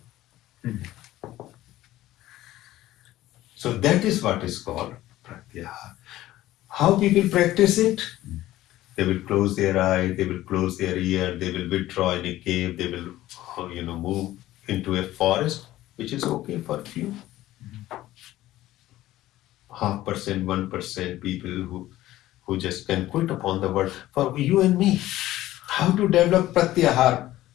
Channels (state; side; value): quieter; right; 15.2 dB